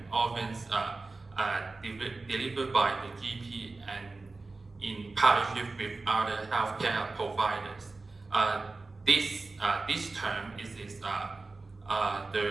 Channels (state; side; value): quieter; left; 3.6 dB